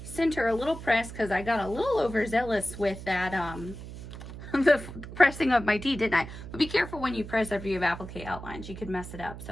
center a little press because I got a little overzealous with that, the pressing of my tee, didn't I? But be careful when you press after you have applique outlines. You could mess it up,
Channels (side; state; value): right; noise; hum, 12 dB below the sound